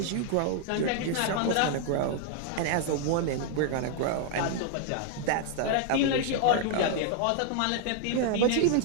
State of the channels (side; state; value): both; different; correlation 0.00